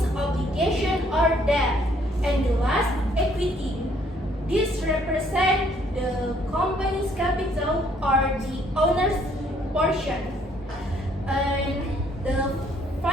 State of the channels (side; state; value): both; normal; correlation 0.65